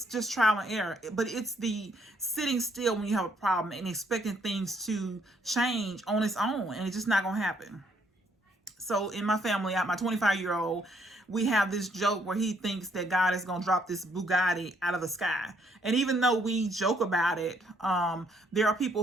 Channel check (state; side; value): normal; both; correlation 0.69